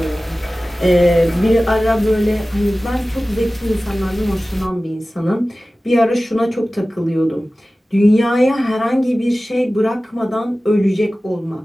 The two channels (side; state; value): both; normal; correlation 0.96